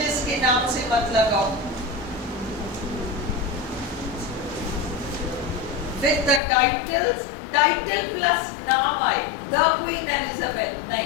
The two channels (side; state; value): right; drops out; at 6.4 s